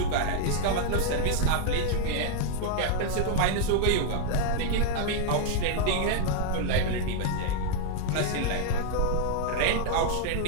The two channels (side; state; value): both; different; correlation -0.01